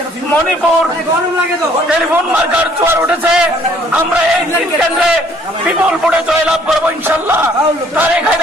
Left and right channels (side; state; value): both; normal; correlation 0.61